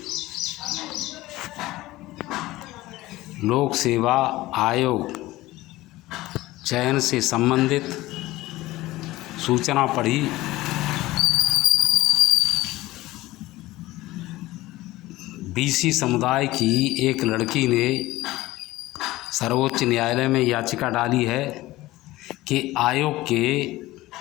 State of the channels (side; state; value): right; quieter; 18.0 dB